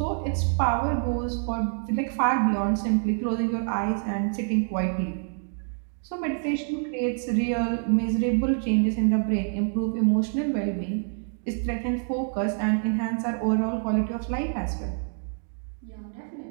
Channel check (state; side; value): silent; left; 60 dB below the other